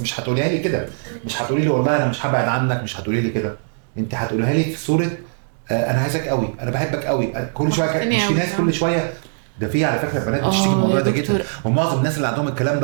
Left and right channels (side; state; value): left; silent; digital silence